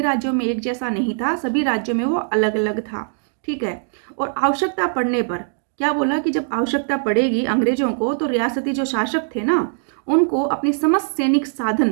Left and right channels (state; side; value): silent; left; digital silence